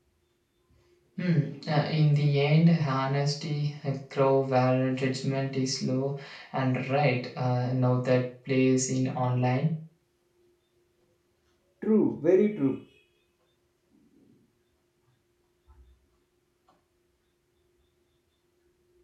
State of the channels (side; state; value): both; identical; correlation 1.00